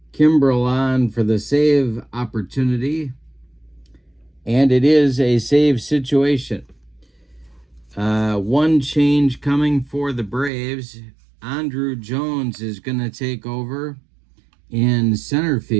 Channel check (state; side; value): drops out; left; at 10.5 s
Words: Kimbrell on for the save opportunity. And it is a save situation. One change coming for the Braves. Andrew Jones is going to take over in center